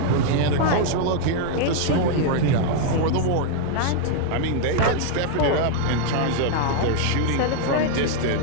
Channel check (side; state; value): both; different; correlation 0.00